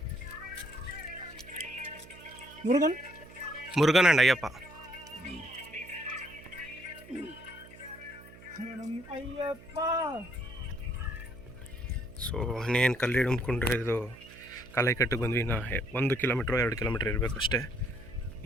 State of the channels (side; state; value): right; noise; hum, 20 dB below the sound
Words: ಮುರುಗನ್ ಅಂಡ್ ಅಯ್ಯಪ್ಪ. ಸೊ ಇನ್ನೇನು ಕಲ್ಲು ಹಿಡ್ಕೊಂಡ್ರೆ ಇದು ಕಾಲೈಕಟ್ಟಿಗೆ ಬಂದ್ವಿ. 1 ಕಿಲೋಮೀಟ್ರ್ 2 ಕಿಲೋಮೀಟ್ರ್ ಇರಬೇಕು ಅಷ್ಟೇ